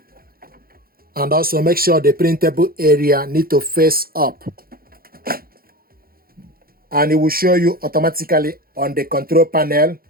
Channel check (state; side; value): late; left; 0.43 ms